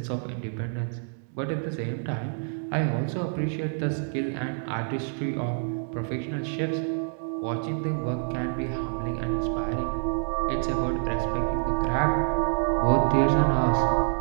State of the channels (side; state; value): left; silent; 60 dB below the other